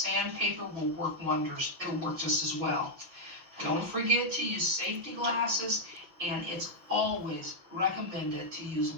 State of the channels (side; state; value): left; late; 6.2 ms